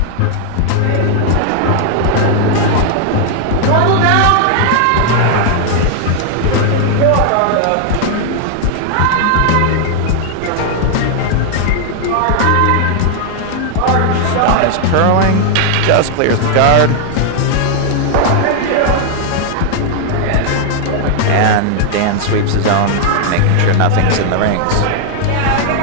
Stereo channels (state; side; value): different; both; correlation 0.00